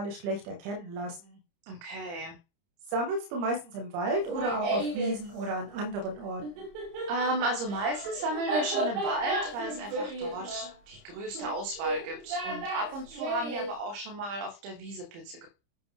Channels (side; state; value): left; late; 30 ms